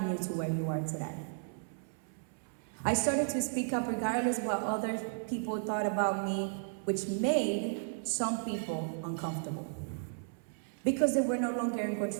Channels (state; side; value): silent; left; 55 dB below the other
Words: you to where you are today. I started to speak up regardless of what other people thought about me, which made some people uncomfortable because they were no longer in